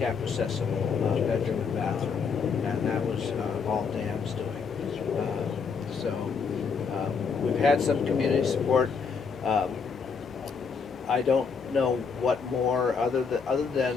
accessible bedroom and bathroom, and that was all Dan's doing. We've had some community support. I don't know what more other than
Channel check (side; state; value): right; quieter; 5.7 dB